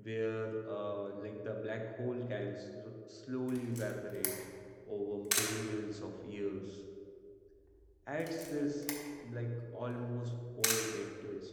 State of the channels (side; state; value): both; identical; correlation 1.00